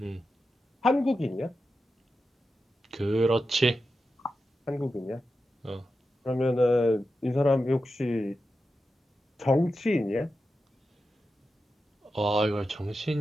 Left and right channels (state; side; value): normal; both; correlation 0.90